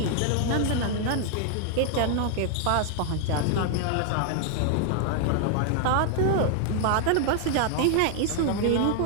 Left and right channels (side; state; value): both; different; correlation 0.00